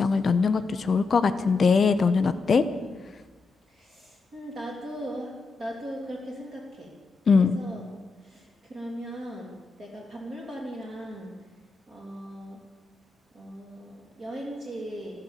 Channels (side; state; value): right; quieter; 4.2 dB